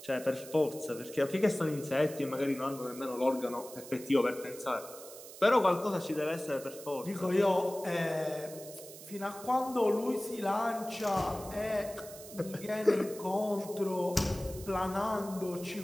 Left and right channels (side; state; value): right; noise; hiss, 15 dB below the sound